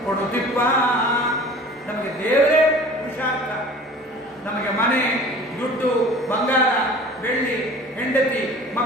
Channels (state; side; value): normal; both; correlation 0.43